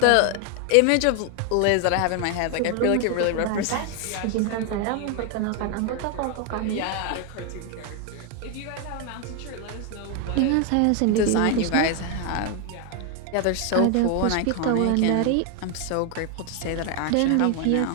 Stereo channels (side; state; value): both; different; correlation 0.01